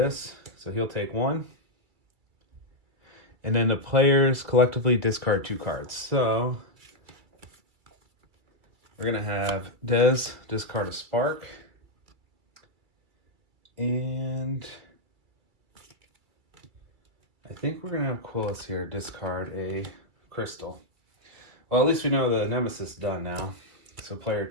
So he'll take 1. And then the players collectively discard 2 cards. So we're going to have Des discard a spark. And I think we're going to have QUILIUS here discard a crystal. Well, at least we know the nemesis is done now. So player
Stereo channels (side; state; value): left; late; 2.3 ms